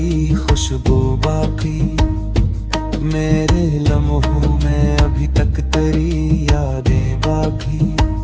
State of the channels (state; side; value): identical; both; correlation 1.00